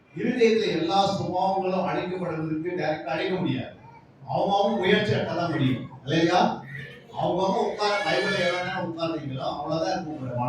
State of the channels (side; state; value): both; identical; correlation 1.00